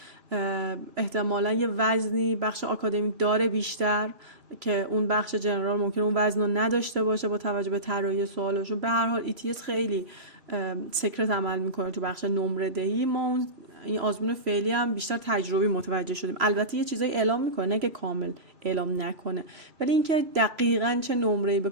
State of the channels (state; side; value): late; left; 3.0 ms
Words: احتمالاً یه وزنی بخش آکادمیک داره بیشتر که اون بخش جنرال ممکنه اون وزن رو نداشته باشه با توجه به طراحی سوالشون. به هر حال ETS خیلی سکرت عمل میکنه تو بخش نمره دهی. ما این آزمون فعلی هم بیشتر تجربی متوجه شدیم. البته یه چیزایی اعلام میکنه، نه که کامل اعلام نکنه، ولی اینکه دقیقاً چه نمره‌ای به